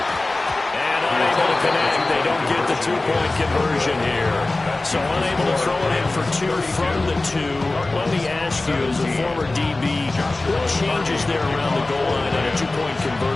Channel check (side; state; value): right; quieter; 3.1 dB